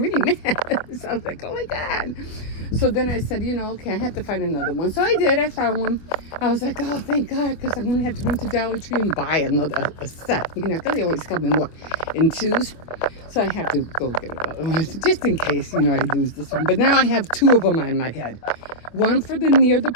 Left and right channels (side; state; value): right; late; 25 ms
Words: mad. So I was like, oh my God. So then I said, okay, I have to find another one. So I did. I found one. I was like, oh, thank God, because I'm going to have to run to Dollar Tree and buy a set. Because they always come in twos. So I have to go get it, just in case, I lose this one. But now I have 2 of them on my head. One for near the